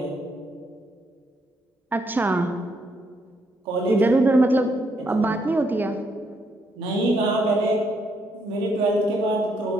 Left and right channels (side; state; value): both; normal; correlation 0.74